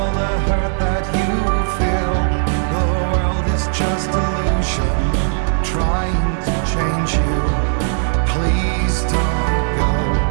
the hurt that you feel. The world is just illusion, trying to change you. Please don't go.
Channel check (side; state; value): left; silent; digital silence